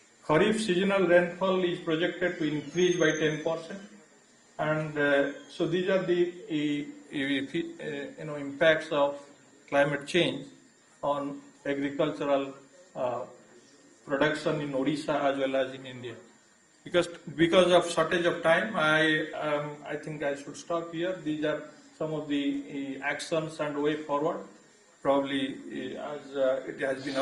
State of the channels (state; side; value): identical; both; correlation 1.00